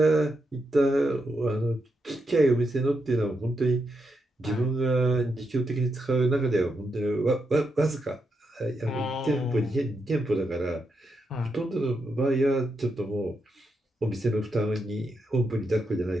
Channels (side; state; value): both; normal; correlation 0.83